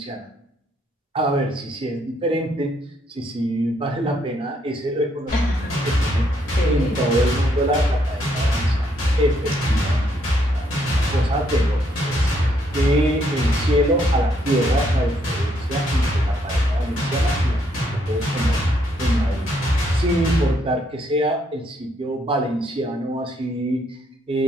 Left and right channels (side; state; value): both; normal; correlation 0.72